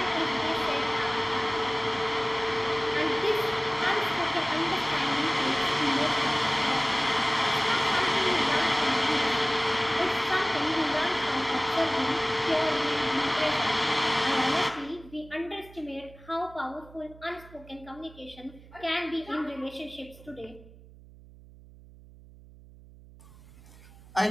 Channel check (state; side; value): noise; right; hum, 21 dB below the sound